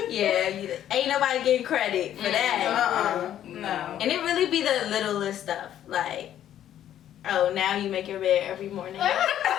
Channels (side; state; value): right; quieter; 11.1 dB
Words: Yeah, ain't nobody getting credit for that. No. And it really be the littlest stuff. Like, oh, now you make your bed every morning. Literally.